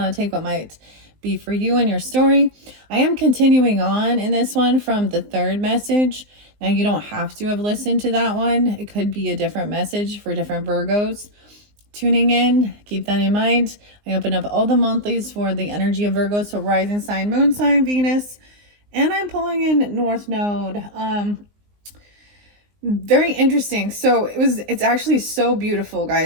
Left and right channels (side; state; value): left; late; 19 ms